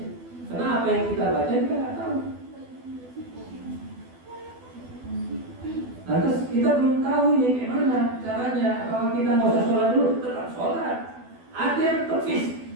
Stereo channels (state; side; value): late; left; 12 ms